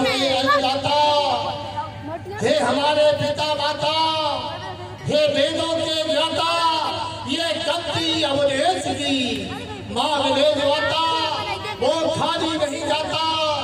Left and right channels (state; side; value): identical; both; correlation 1.00